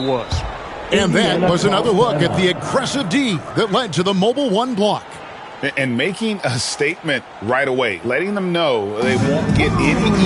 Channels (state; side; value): identical; both; correlation 1.00